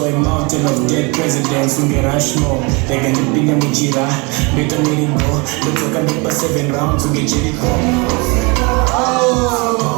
a mountain of dead presidents unge rushmore rega ndipinde muchira ndoita miringo ndodzoka ndopa 7 rounds unge jeriko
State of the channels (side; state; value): left; quieter; 29.2 dB